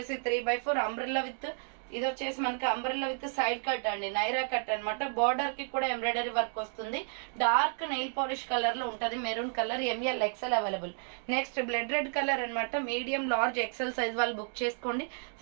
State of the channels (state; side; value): silent; left; 56 dB below the other